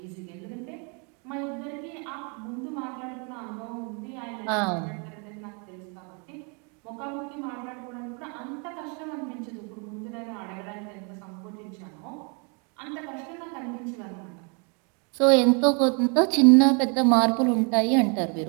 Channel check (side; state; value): left; quieter; 35.7 dB